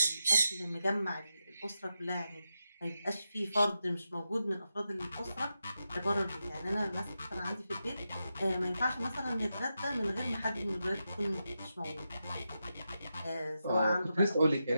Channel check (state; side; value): inverted; both; correlation -0.88